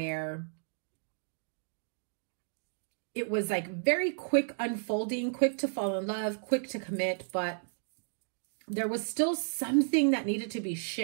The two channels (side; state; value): left; silent; digital silence